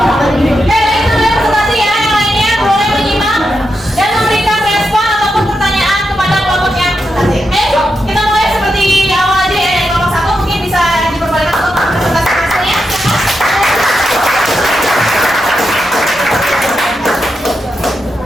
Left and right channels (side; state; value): both; normal; correlation 0.86